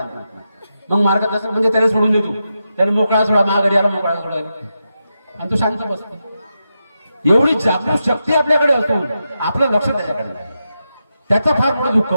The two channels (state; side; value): inverted; both; correlation -0.88